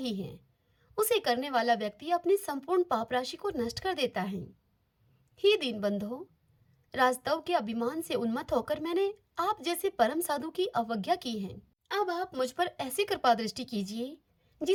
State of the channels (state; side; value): identical; both; correlation 1.00